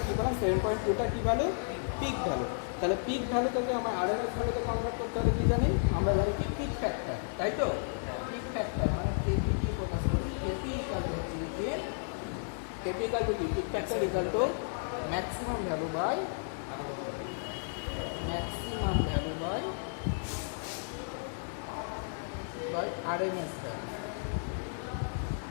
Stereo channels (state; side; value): silent; right; digital silence